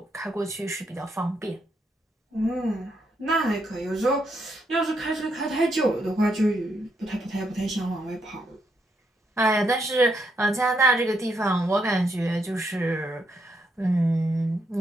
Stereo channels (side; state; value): both; normal; correlation 0.78